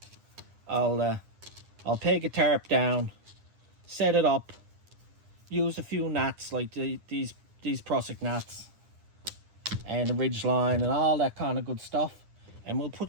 I'll I'll peg a tarp down, set it up, use a few knots like these Prusik knots and the ridge line and all that kind of good stuff, and we'll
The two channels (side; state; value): left; late; 9.8 ms